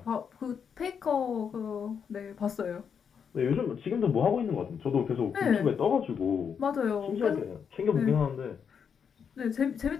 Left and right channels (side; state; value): right; quieter; 7.0 dB